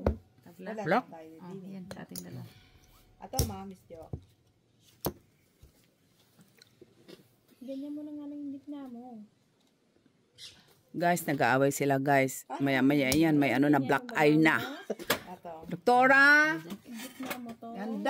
Tabla. wala Block. lang tayo Oh, din. yan. Sa ating dalawa. Ato, Miss Jo. Ganyan mo na nga lang yung gitna mo. Guys, nag-aaway sila guys. Maya-maya yan. May ano na black eye na. Ato. Doktora! Yung gitna mo to.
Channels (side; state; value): both; identical; correlation 1.00